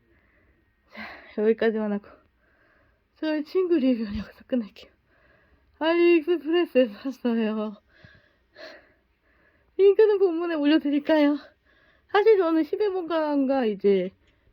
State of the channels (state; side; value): identical; both; correlation 1.00